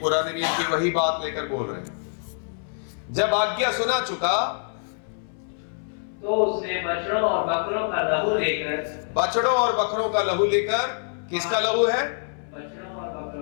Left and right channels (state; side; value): silent; right; 61 dB below the other